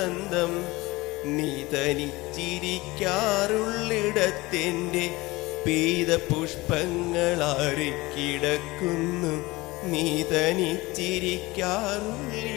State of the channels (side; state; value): right; quieter; 21.3 dB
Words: നീ തനിച്ചിരിക്കാറുള്ളിടത്തെൻ്റെ പെയ്ത പുഷ്പങ്ങളാറിക്കിടക്കുന്നു. നീ